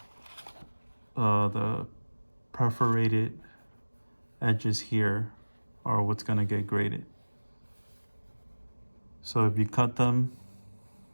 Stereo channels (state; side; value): inverted; both; correlation -1.00